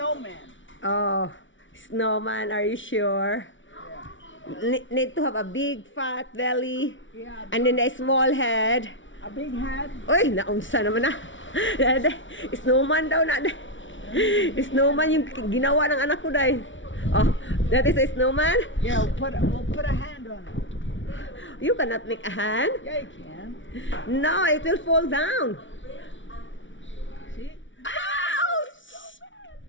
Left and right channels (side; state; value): right; late; 0.56 ms